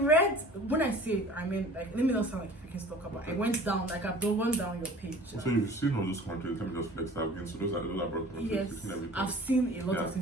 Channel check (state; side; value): normal; both; correlation 0.45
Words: when I say, I mean, like, let me not sound like if you can talk about. I went down, like, I've gone down your page. So you've seen all those countries. Let me just flex that again. So those are broad countries. Yes, You've seen everything. I've seen a lot of